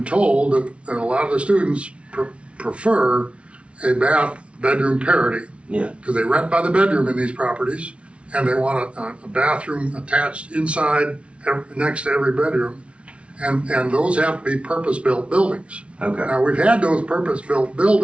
told that a lot of the students prefer a bath-bedroom parity because they rent by the bedroom in these properties, and they want a bathroom attached inside next to every bedroom. And those have to be purpose-built buildings. Okay. Now, we've had those purpose-built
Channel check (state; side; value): late; left; 0.061 ms